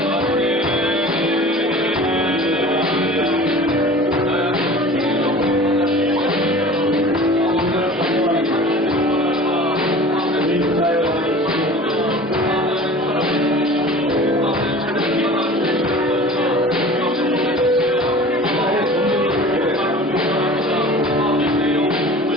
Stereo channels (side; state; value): both; normal; correlation 0.41